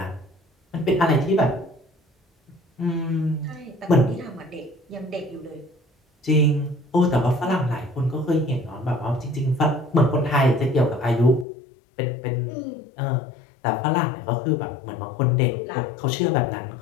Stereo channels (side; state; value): right; drops out; at 11.5 s